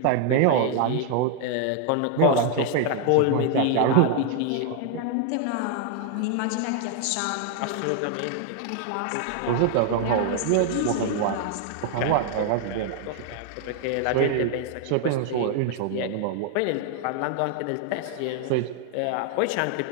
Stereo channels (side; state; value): both; different; correlation 0.00